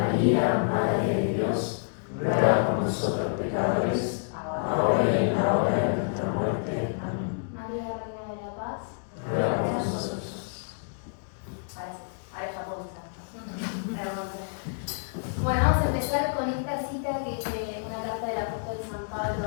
Madre de Dios, ruega por nosotros pecadores, ahora y en la hora de nuestra muerte. Amén. María, Reina de la Paz, ruega por nosotros. Ahora ya puedo empezar. Bueno, vamos a empezar con esta cita que es de una carta del apóstol San Pablo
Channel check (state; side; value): silent; right; digital silence